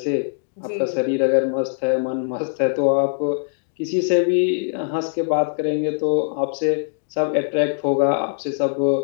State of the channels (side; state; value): right; silent; digital silence